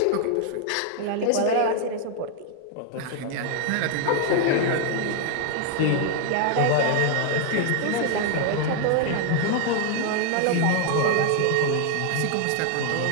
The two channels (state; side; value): different; both; correlation 0.00